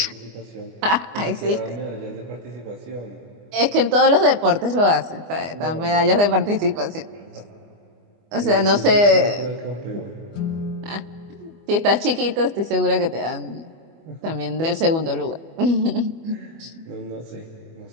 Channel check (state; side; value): late; left; 25 ms